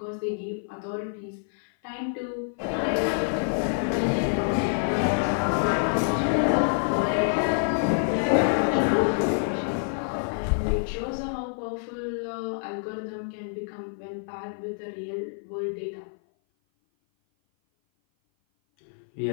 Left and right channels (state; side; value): silent; right; 56 dB below the other